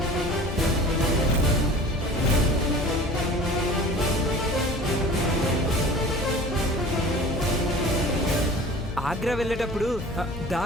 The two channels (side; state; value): left; noise; hum, 10 dB below the sound